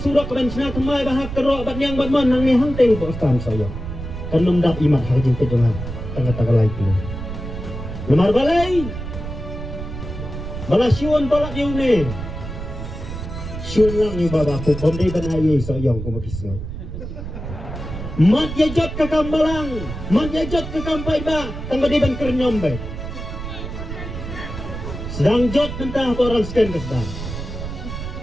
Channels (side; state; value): right; noise; rumble, 8 dB below the sound